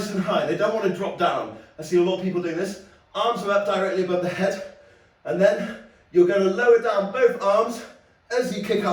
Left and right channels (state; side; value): identical; both; correlation 1.00